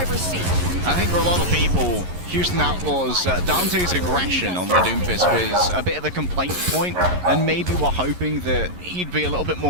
seat. I think for a lot of people, Houston Outlaws, Dante's aggression on the Doomfist was a bit of a complaint point, and maybe we're hoping that he'd be a little bit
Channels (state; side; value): late; left; 11 ms